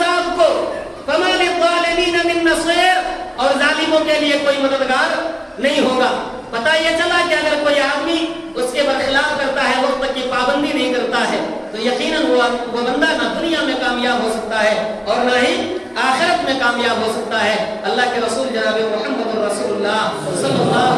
کو, فما للظالمین من نصیر, اور ظالموں کے لیے کوئی مددگار نہیں ہوگا. پتہ یہ چلا کہ اگر کوئی آدمی اس کے برخلاف کرتا ہے, وقت کی پابندی نہیں کرتا ہے, تو یقیناً وہ بندہ نہ دنیا میں کامیاب ہو سکتا ہے اور نہ ہی آخرت میں کامیاب ہو سکتا ہے. اللہ کے رسول جناب محمد رسول اللہ صلی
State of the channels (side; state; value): both; identical; correlation 1.00